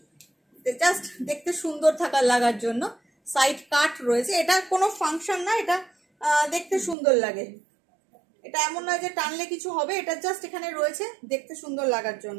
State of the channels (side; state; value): left; drops out; at 7.0 s